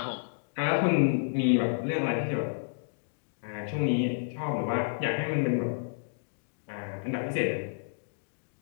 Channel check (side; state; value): right; silent; digital silence